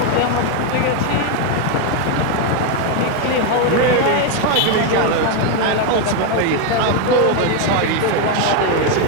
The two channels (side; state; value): both; different; correlation 0.01